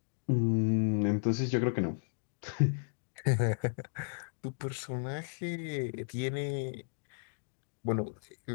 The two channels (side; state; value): right; silent; digital silence